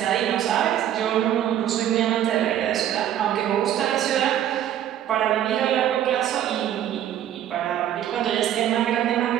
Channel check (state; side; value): quieter; left; 11.1 dB